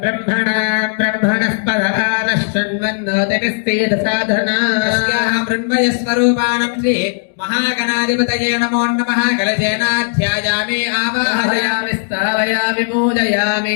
బ్రహ్మణస్పదాన శృణ్వన్నోతిభిస్సేద సాధనా మృణ్మయస్వరూపాణం శ్రీ మహాగణాధిపతయే నమో నమః కలశేనాధ్యాయామి ఆవాహయామి స్థావయామి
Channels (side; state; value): right; silent; digital silence